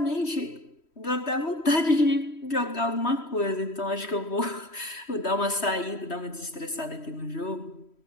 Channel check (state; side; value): late; right; 3.1 ms